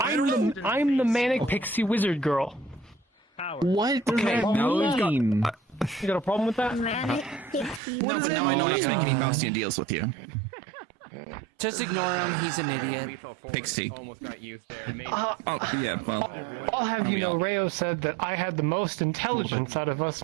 the manic pixie wizard girl. What? Okay, You got a problem with that? Manic pixie No, but wizard. now I know Oh my that's God. when Bastian deals with you. Just ignore him, he's an idiot. Pixie. Oh, yeah, well. I'll have you know, Rayo said that I had the most intelligence out of us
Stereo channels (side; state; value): left; drops out; at 7.8 s